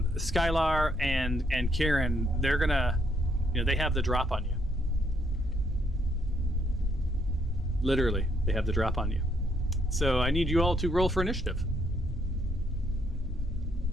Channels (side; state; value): both; normal; correlation 0.72